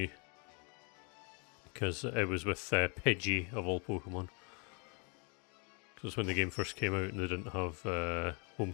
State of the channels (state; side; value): quieter; right; 35.6 dB